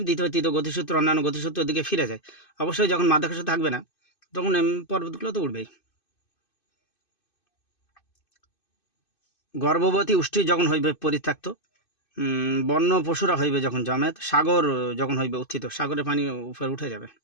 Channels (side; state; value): right; late; 2.5 ms